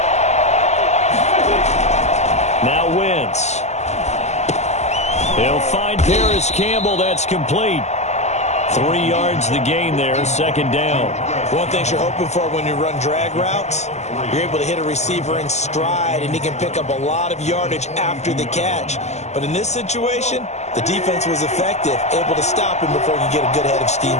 Now Wentz. He'll find Paris Campbell. That's complete. 3 yards the gain there, second down. One thing you're hoping for when you run drag routes, you're able to hit a receiver in stride, and he can pick up a lot of yardage after the catch. But in this situation, the defense was effective, able to stop him before he could get a good head of steam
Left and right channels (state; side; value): late; right; 0.33 ms